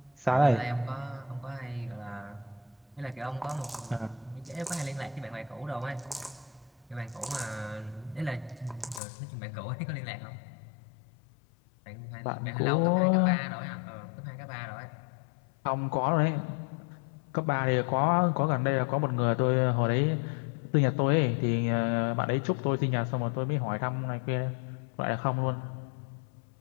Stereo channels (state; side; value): drops out; right; at 9.0 s